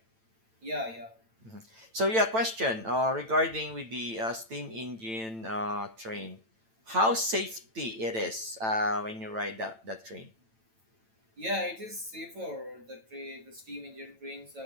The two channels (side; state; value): left; late; 9.0 ms